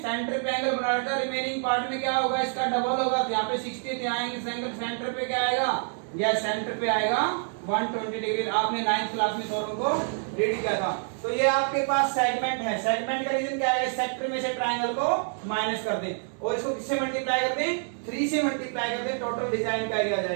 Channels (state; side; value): silent; left; 60 dB below the other